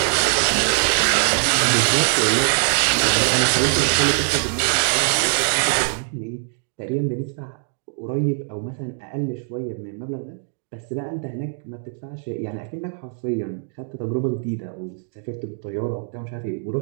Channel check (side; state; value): left; silent; 64 dB below the other